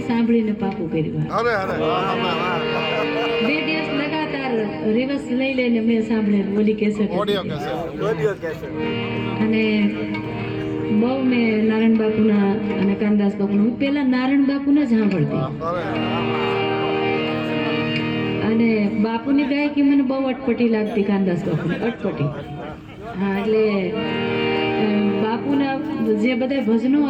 સાંભળીને પાકું કર્યું. 2 દિવસ લગાતાર રિવર્સ લઈ લઈને મેં સાંભળેલું ઓલી કેસેટ. અને બહુ મેં નારાયણ બાપુના અને કાનદાસ બાપુના, હું પહેલા નારાયણ બાપુને જ સાંભળતી. અને બાપુની ગાયકી મને બહુ અટપટી લાગતી, કાનદાસ બાપુની અટપટી. હા, એટલે બાપુના જે બધા ભજનો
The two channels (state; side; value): identical; both; correlation 1.00